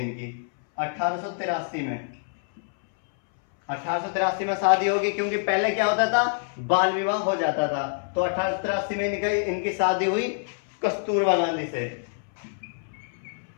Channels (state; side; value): silent; right; 61 dB below the other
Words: 1883 में। 1883 में शादी होगी, क्योंकि पहले क्या होता था, बाल विवाह हो जाता था। तो 1883 में इनकी शादी हुई कस्तूरबा गांधी से।